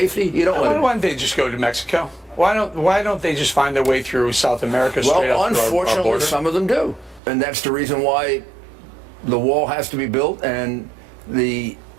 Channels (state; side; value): drops out; left; at 7.2 s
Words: you don't let them in. Why don't they just go to Mexico? Why don't they just find their way through South America straight up through our unfortunately, border? some of them do. And that's the reason why the wall has to be built and the